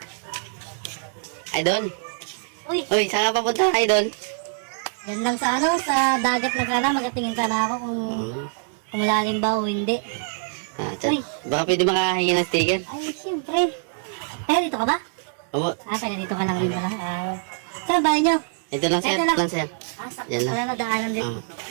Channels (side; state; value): left; silent; 62 dB below the other